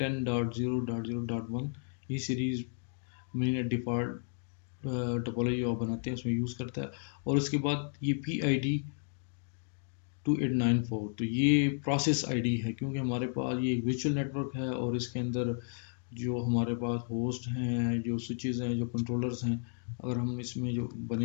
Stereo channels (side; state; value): right; silent; digital silence